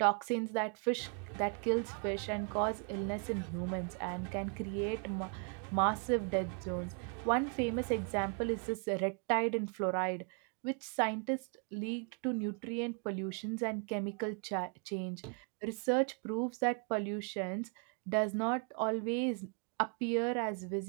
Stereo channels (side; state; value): left; quieter; 38.8 dB